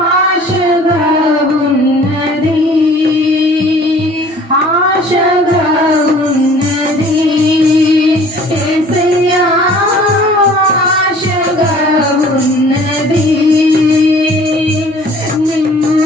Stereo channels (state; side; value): normal; both; correlation 0.51